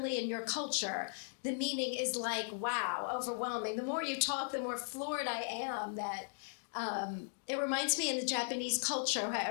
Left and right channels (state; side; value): silent; right; digital silence